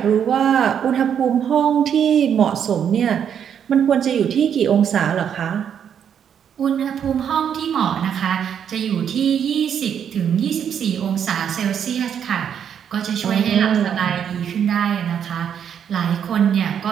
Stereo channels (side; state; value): left; quieter; 8.4 dB